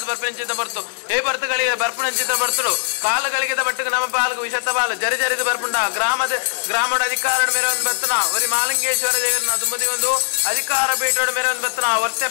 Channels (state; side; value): silent; right; digital silence